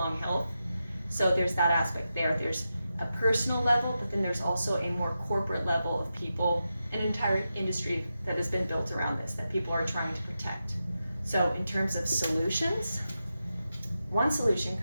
health. So there's that aspect there. There's a personal level, but then there's also a more corporate level of people, an entire industry that has been built around this, that people are trying to protect. So in terms of solutions, one solution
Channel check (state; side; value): inverted; both; correlation -0.89